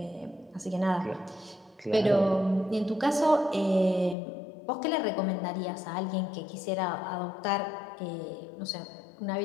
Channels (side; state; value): right; drops out; at 4.2 s